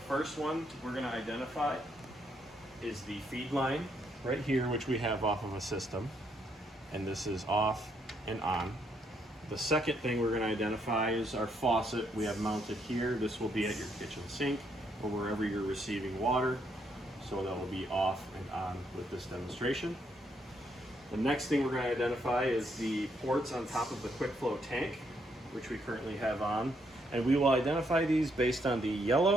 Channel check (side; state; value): both; normal; correlation 0.74